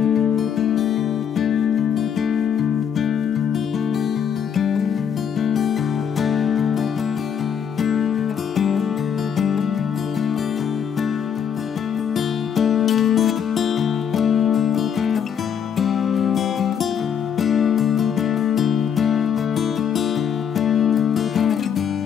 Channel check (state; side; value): quieter; right; 7.9 dB